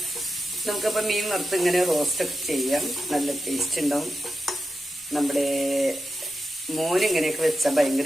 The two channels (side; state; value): both; normal; correlation 0.89